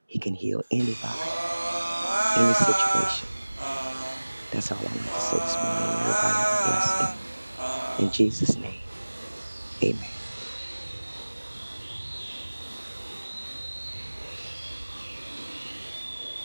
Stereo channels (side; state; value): both; inverted; correlation -1.00